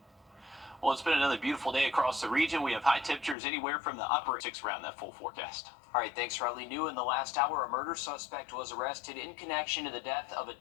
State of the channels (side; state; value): right; drops out; at 3.4 s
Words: Well, it's been another beautiful day across the region. We have high temperatures anywhere from the upper 6 around that full forecast. All right, thanks, Riley. New in the last hour, a murder suspect was arrested in connection to the death of a